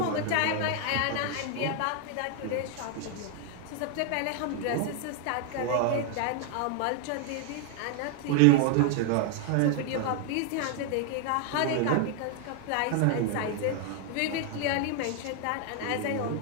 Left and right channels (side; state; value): both; different; correlation 0.00